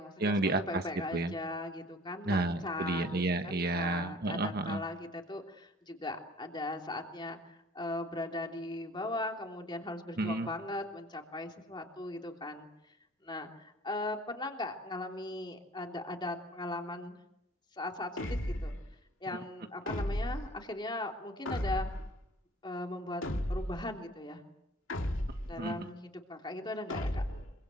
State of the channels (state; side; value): normal; both; correlation 0.50